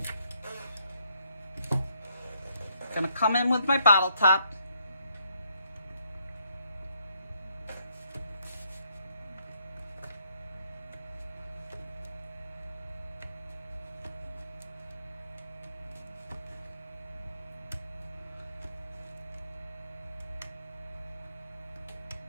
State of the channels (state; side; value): inverted; both; correlation -0.73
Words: I'm going to come in with my bottle top.